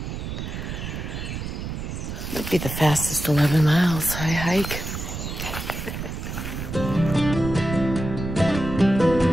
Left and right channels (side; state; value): right; noise; rumble, 6 dB below the sound